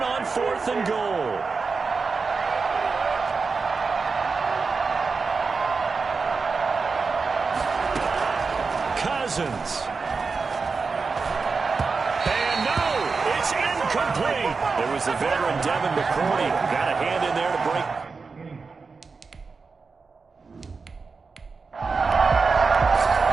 on 4th and goal. Cousins. And no, it's incomplete. There was the veteran Devin McCourty. Got a hand in there to break.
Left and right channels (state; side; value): quieter; left; 4.6 dB